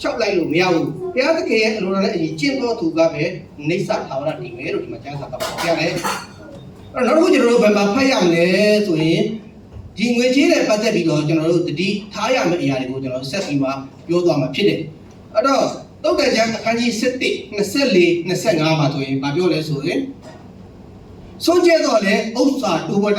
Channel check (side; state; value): both; identical; correlation 1.00